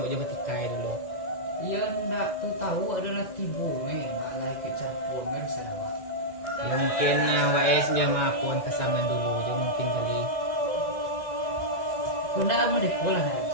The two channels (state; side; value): late; right; 2.0 ms